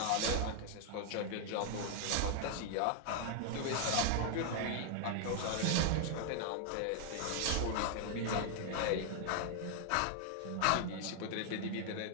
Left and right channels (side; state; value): both; different; correlation 0.00